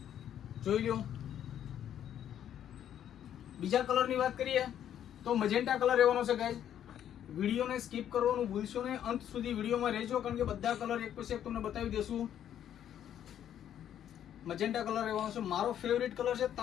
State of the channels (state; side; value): quieter; right; 10.2 dB